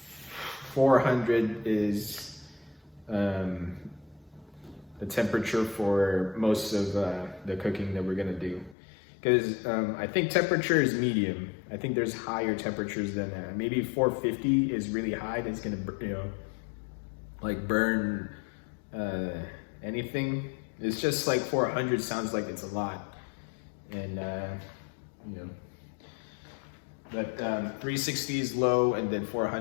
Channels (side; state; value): right; drops out; at 8.8 s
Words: 400 is the temperature for most of the cooking that we're gonna do. Because I think temperature is medium. I think there's higher temperatures than that. Maybe 450 is really high. That's gonna, like burn anything. It's just like 400 sounds like it's a lot, and but 360 is low, and then